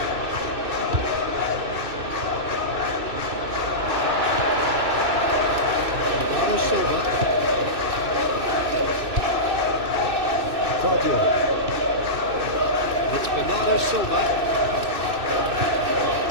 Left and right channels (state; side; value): late; left; 2.6 ms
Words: Bernardo Silva. Claudio. It's Bernardo Silva.